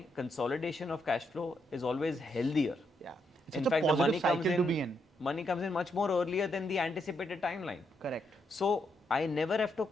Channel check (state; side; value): normal; both; correlation 0.78